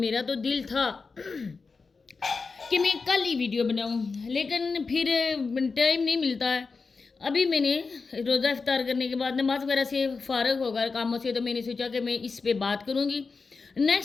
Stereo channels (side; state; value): right; quieter; 4.5 dB